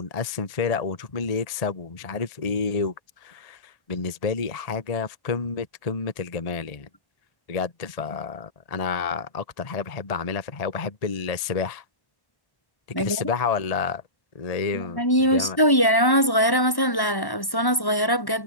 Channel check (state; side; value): late; right; 1.1 ms